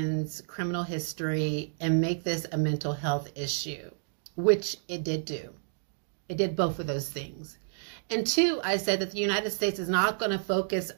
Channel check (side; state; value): left; silent; digital silence